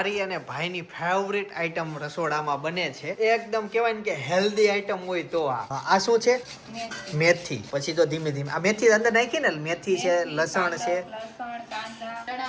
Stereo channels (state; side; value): identical; both; correlation 1.00